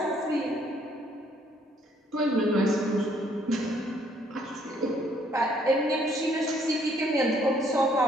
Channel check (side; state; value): both; normal; correlation 0.65